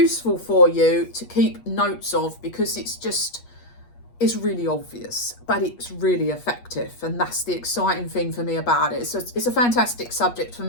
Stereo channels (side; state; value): right; late; 8.4 ms